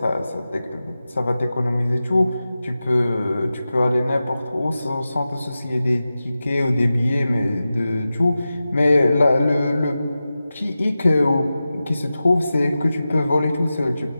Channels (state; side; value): inverted; both; correlation -0.94